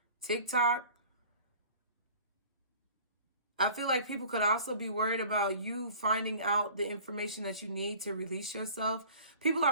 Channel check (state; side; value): inverted; both; correlation -0.47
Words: TikTok. I feel like people could also be worried about you finding out the information that you need to release yourself. People